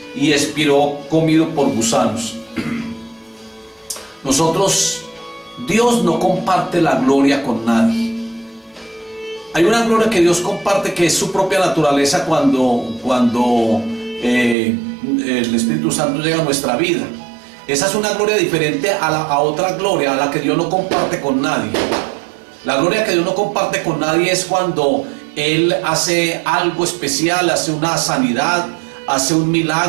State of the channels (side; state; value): left; drops out; at 14.6 s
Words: y expiró comido por gusanos. Dios no comparte la gloria con nadie. Hay una gloria que Dios comparte, que es su propia naturaleza cuando el Espíritu Santo llega a nuestra vida. Esa es una gloria diferente a otra gloria, a la que Dios no comparte con nadie. La gloria que Dios no comparte con nadie es cuando Él hace algo especial, hace una sanidad, hace un